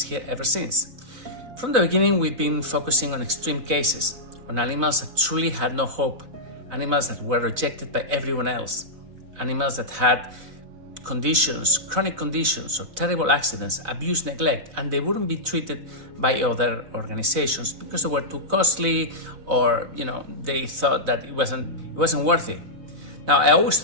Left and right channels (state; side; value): late; left; 4.0 ms